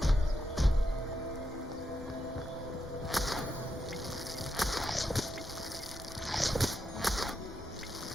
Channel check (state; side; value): normal; both; correlation 0.84